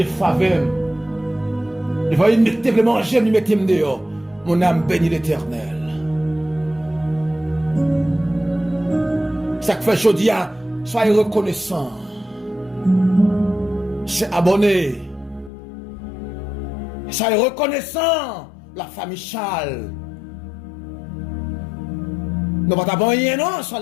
faveur. Il va y mettre manger, il mettre dehors. Mon âme bénit l'Éternel. Ça que fait aujourd'hui, soyez reconnaissant. C'est abonné. Soyez reconnaissant. La famille Charles. Nous ne pas rien, non, sur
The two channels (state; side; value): drops out; right; at 15.5 s